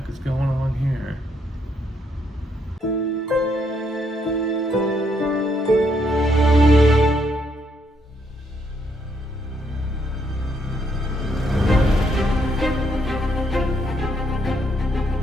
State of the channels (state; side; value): normal; both; correlation 0.73